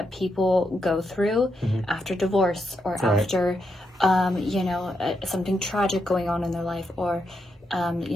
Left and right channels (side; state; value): both; normal; correlation 0.82